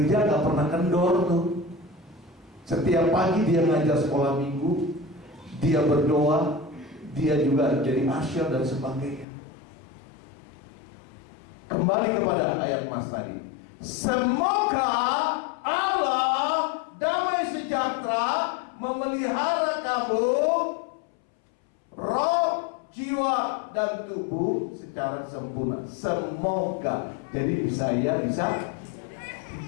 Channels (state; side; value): drops out; right; at 9.2 s